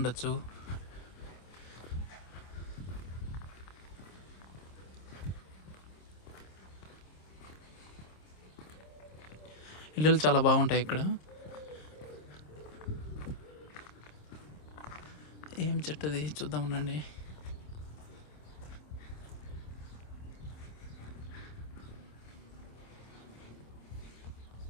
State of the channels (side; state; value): right; late; 27 ms